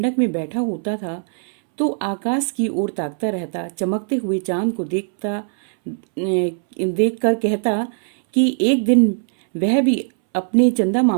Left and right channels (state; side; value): silent; left; 66 dB below the other